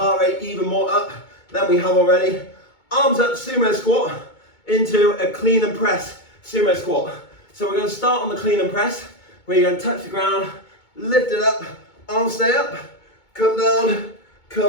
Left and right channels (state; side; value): late; right; 2.2 ms